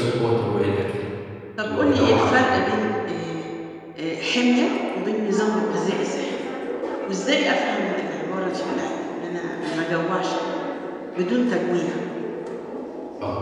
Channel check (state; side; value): identical; both; correlation 1.00